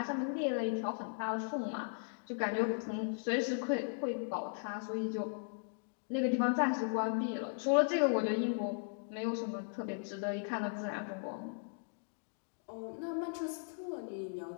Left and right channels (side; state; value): right; silent; digital silence